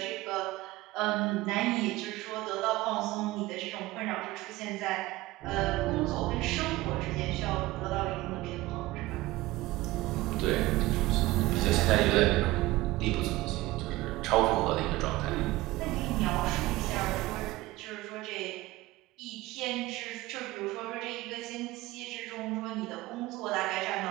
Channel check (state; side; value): quieter; left; 18.8 dB